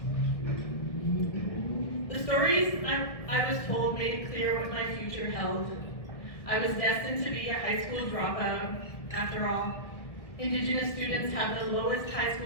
The stories I was told made it clear what my future held. I was destined to be a high school dropout. After all, Indigenous students have the lowest high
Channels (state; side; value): late; right; 1.7 ms